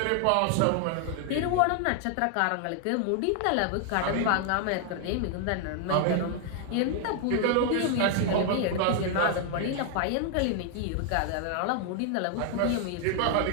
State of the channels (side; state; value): both; different; correlation 0.00